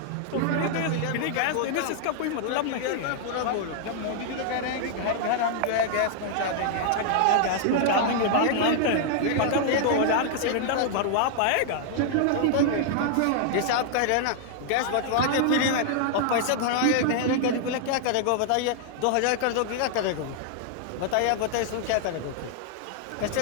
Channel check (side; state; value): both; different; correlation -0.01